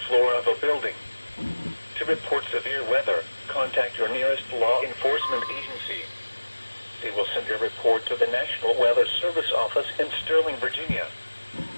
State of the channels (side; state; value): both; inverted; correlation -1.00